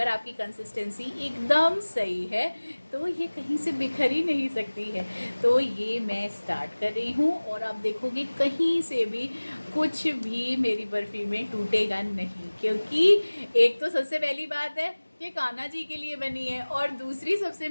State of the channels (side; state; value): both; inverted; correlation -1.00